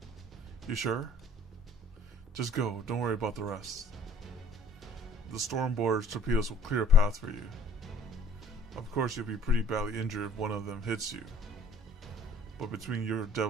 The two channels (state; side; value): normal; both; correlation 0.52